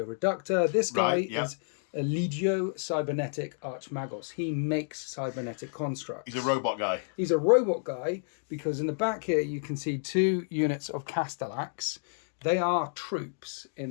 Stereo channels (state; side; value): silent; right; digital silence